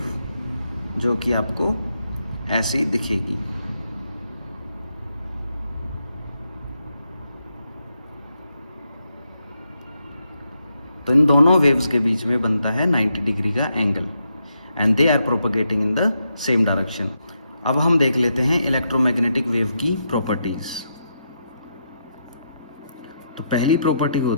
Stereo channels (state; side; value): inverted; both; correlation -0.82